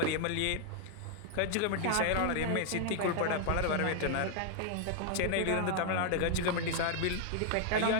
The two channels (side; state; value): both; different; correlation -0.01